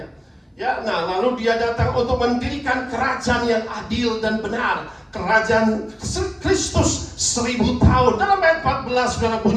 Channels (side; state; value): both; identical; correlation 1.00